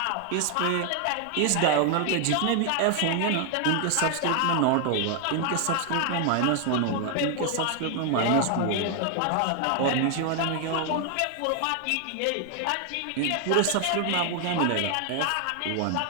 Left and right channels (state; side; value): different; both; correlation 0.00